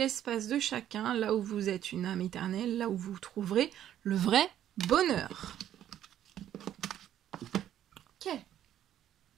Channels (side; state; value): left; quieter; 11.3 dB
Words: de chacun, là où vous êtes une âme éternelle, là où vous trouverez le vrai bonheur. Ok.